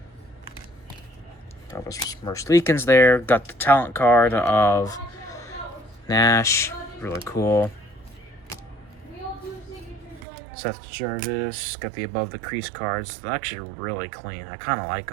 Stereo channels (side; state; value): left; drops out; at 10.2 s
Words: Elvis Merzlikins there. Got the talent card of Nash. Really cool. Seth Jarvis. Got the above the crease cards. They're actually really clean. I kind of like